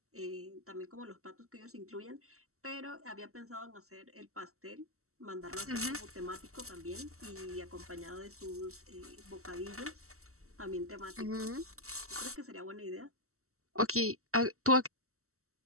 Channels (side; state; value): left; late; 0.63 ms